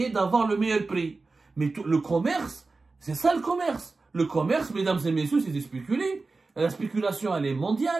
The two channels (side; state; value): left; quieter; 3.8 dB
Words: d'avoir le meilleur prix. Mais le commerce, c'est ça le commerce. Le commerce, mesdames et messieurs, c'est de spéculer. La spéculation, elle est